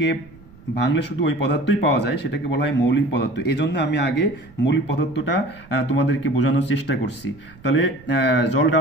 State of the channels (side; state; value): right; noise; rumble, 23 dB below the sound